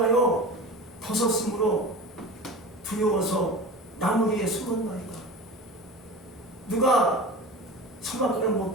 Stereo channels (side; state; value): both; normal; correlation 0.33